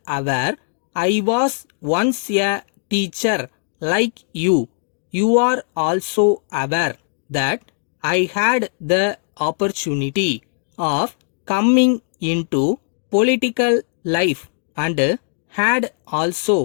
aware, I was once a teacher like you. You are also aware that I had the opportunity of coming into political life and had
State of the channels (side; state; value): right; silent; digital silence